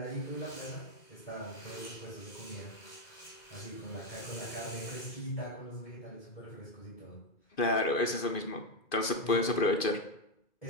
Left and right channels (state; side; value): late; right; 2.5 ms